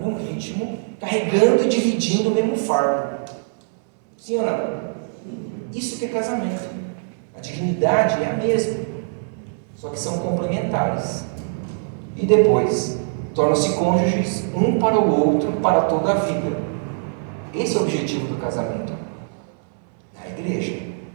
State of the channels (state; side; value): silent; left; 64 dB below the other